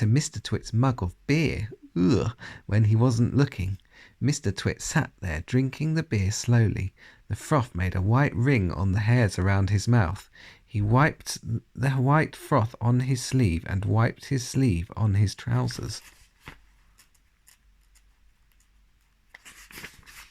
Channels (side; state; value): both; identical; correlation 1.00